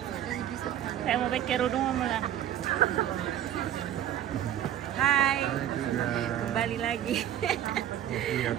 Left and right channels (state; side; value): quieter; left; 11.2 dB